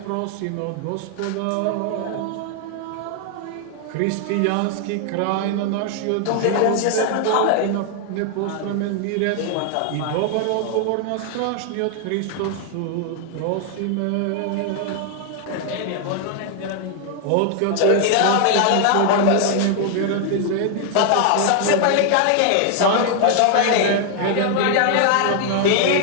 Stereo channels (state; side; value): different; both; correlation 0.00